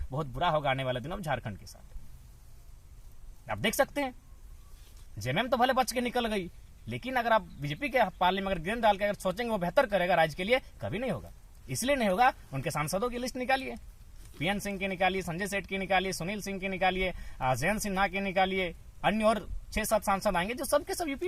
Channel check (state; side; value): identical; both; correlation 1.00